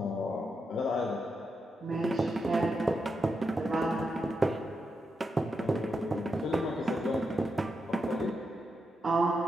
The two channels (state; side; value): normal; both; correlation 0.85